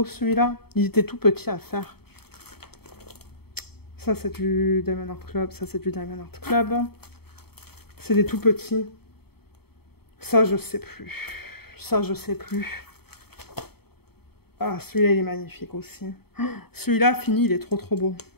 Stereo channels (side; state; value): right; late; 0.96 ms